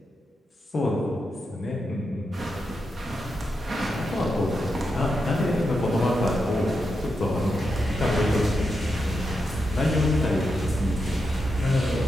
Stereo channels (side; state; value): both; normal; correlation 0.86